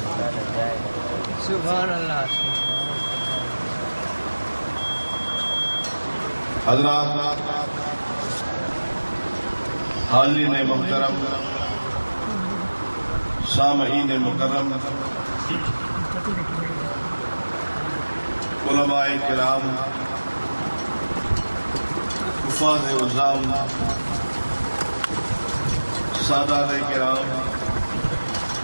सुभान अल्लाह। हज़रात, हाज़रीन मुहतरम, सामईन मुकर्रम, उलमाए किराम, हुफ़ाज़ उज़्ज़ाम, सादात किराम,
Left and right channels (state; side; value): inverted; both; correlation -1.00